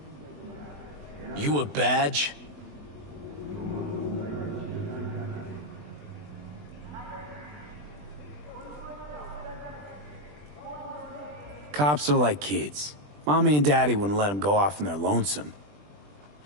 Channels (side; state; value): left; late; 20 ms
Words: You a badge? Cops are like kids. Mommy and Daddy wouldn't let them go off in their lonesome.